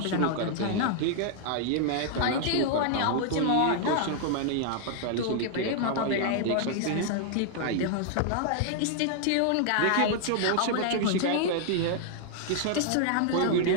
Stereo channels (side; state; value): both; different; correlation 0.00